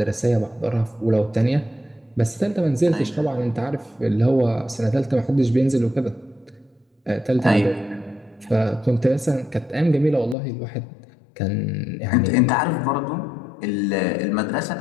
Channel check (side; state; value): right; drops out; at 10.4 s